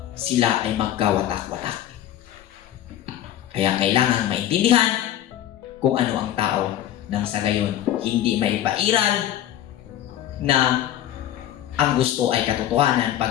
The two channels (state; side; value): quieter; right; 11.9 dB